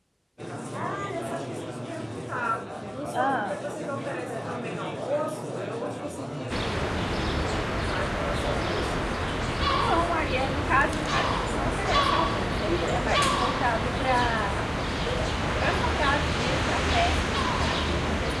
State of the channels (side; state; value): both; identical; correlation 1.00